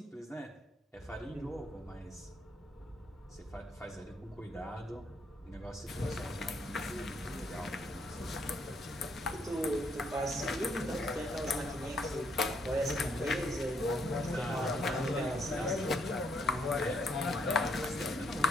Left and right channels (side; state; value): both; normal; correlation 0.71